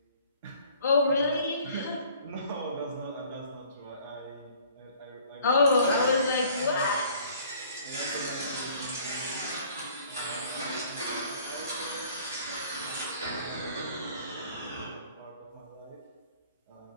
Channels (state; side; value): inverted; both; correlation -0.55